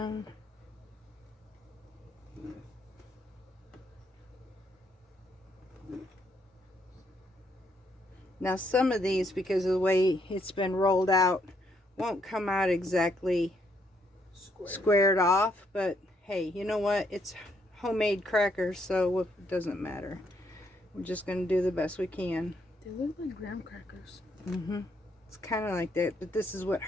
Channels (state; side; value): normal; both; correlation 0.73